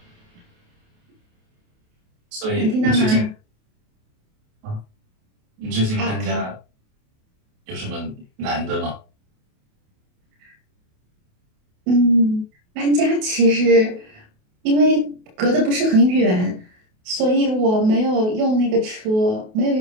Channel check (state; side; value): late; left; 28 ms